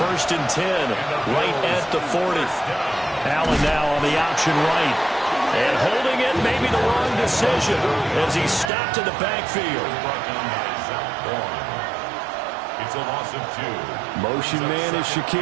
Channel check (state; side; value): drops out; left; at 8.7 s